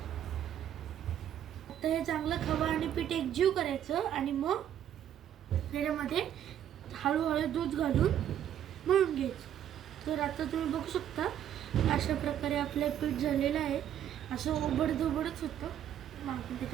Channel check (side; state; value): left; quieter; 10.4 dB